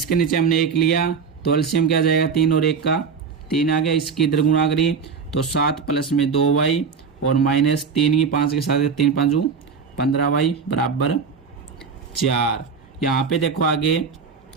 नीचे हमने 1 लिया तो एलसीएम क्या आ जाएगा 3 और 1 का 3 आ गया। इसकी इधर गुणा करी तो 7 प्लस में 2y और माइनस 3 की 5 के साथ 3 5 15y बराबर 4। यहाँ पे देखो आगे,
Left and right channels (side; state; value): left; quieter; 5.7 dB